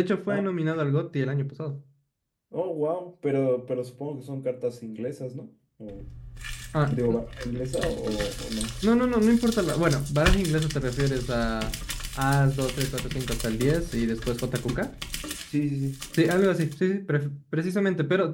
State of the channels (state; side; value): identical; both; correlation 1.00